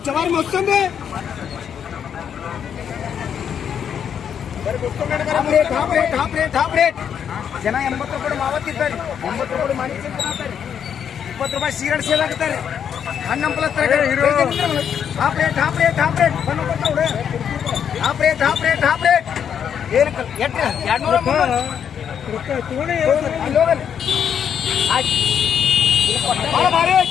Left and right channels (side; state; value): right; quieter; 8.2 dB